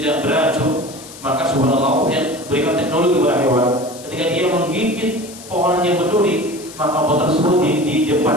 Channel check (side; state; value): left; noise; hiss, 17 dB below the sound